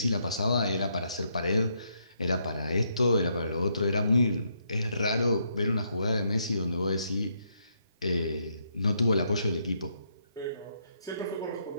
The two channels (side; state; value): both; inverted; correlation -0.76